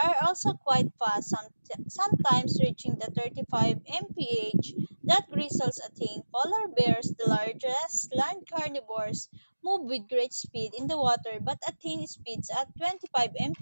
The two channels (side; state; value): both; inverted; correlation -1.00